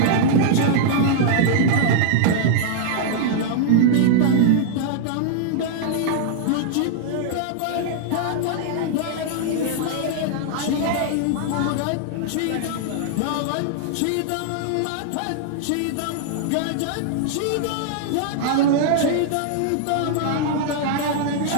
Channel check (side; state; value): both; different; correlation -0.01